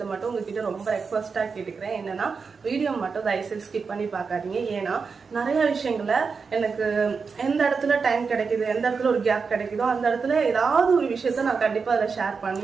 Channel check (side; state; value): left; quieter; 5.2 dB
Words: மட்டும் உங்ககிட்ட ரொம்ப ரெக்வஸ்டா கேட்டுக்கிறேன். என்னன்னா வீடியோ மட்டும் தயவுசெய்து ஸ்கிப் பண்ணி பார்க்காதீங்க. ஏன்னா நிறைய விஷயங்களை எனக்கு எந்த இடத்துல டைம் கிடைக்குது, எந்த இடத்துல ஒரு கேப் கிடைக்குதோ அந்த இடத்துல ஏதாவது ஒரு விஷயத்த நான் கண்டிப்பா அதை ஷேர்